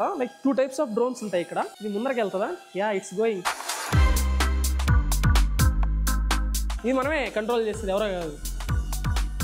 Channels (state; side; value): identical; both; correlation 1.00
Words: లైక్ 2 types ఆఫ్ డ్రోన్స్ ఉంటాయి ఇక్కడ. ఇది ముందరకి వెళ్తుందా? Yeah, it's going. ఇది మనమే కంట్రోల్ చేస్తుంది, ఎవరో కాదు.